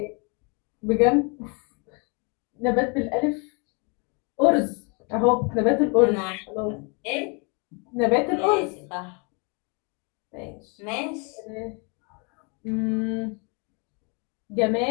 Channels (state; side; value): quieter; right; 33.8 dB